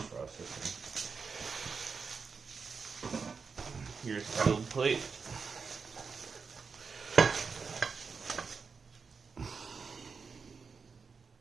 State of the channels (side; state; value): left; quieter; 5.2 dB